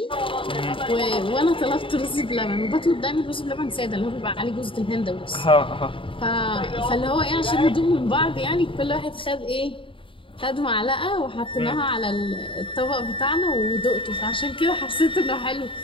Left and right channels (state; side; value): late; right; 0.25 ms